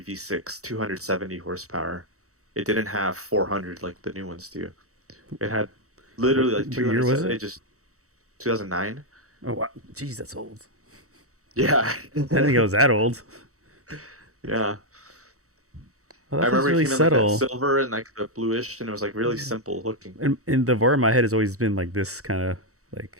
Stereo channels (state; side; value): late; left; 0.65 ms